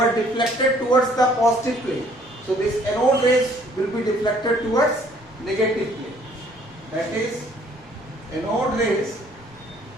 deflected towards the positive plane. So this anode rays will be deflected towards negative plane. That is, anode rays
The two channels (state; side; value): normal; both; correlation 0.60